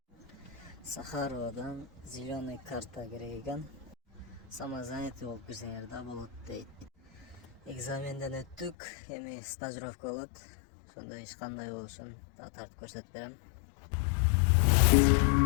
Сахаровадан зеленый карта керек екен. Самозанятый болып кірсеңер да болады дейді. Экзаменден өттік, эми стажировка болады. Сонда ешқандай болушын тартып көрсетіп берем.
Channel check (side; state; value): right; drops out; at 8.8 s